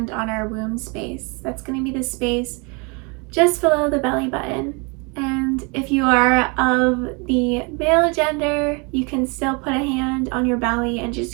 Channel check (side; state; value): left; quieter; 31.7 dB